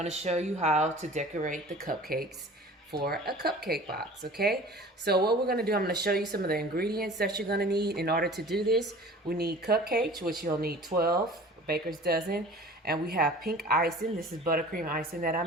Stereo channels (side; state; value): both; normal; correlation 0.43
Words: to show you how to decorate the cupcakes for a cupcake box. Okay, so what we're going to do, I'm going to show you some of the ingredients that you're going to need in order to do this. We need cupcakes, which you'll need 12, baker's dozen, and we have pink icing. This is buttercream icing that I